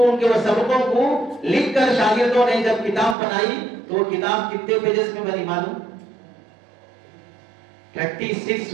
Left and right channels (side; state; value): left; drops out; at 3.2 s